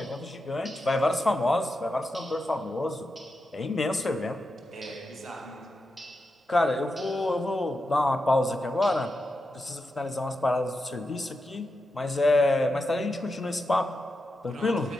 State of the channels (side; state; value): both; normal; correlation 0.88